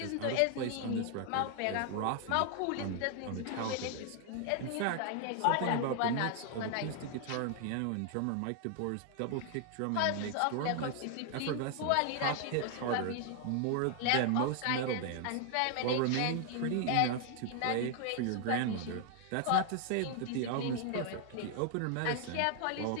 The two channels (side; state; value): both; different; correlation 0.00